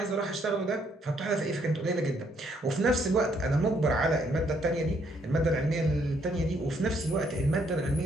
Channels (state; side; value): normal; both; correlation 0.70